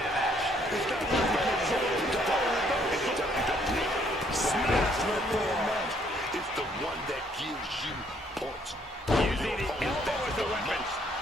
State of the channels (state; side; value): normal; both; correlation 0.66